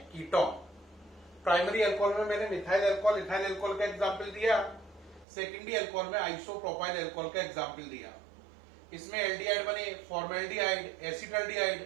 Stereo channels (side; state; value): left; drops out; at 5.2 s